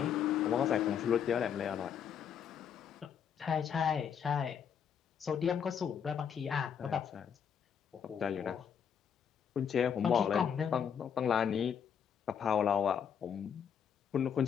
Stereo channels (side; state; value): right; quieter; 7.8 dB